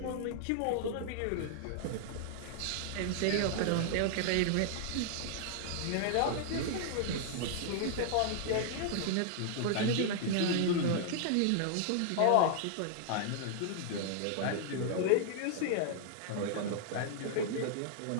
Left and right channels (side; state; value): both; different; correlation -0.01